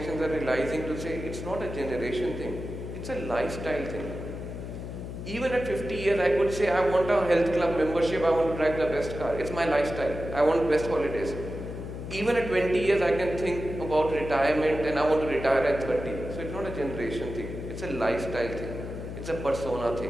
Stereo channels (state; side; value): noise; left; hum, 8 dB below the sound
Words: are realizing to say, it's not a generation thing, it's a lifestyle thing. Even at 50 years, I could say, I want a health club membership, I want to drive the best car. It's my lifestyle. I want best holidays. Even at 20 years, I can think about retirement and I want to retire at 30. So it's not a generation thing. It's a lifestyle thing. It's a persona